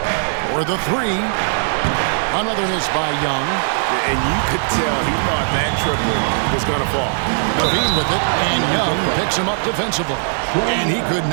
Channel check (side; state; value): left; silent; digital silence